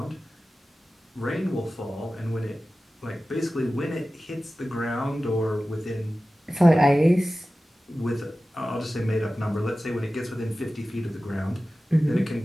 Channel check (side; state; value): both; normal; correlation 0.95